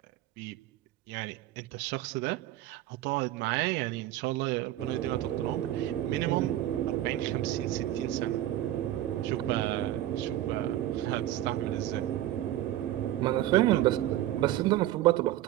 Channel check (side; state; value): left; quieter; 13.9 dB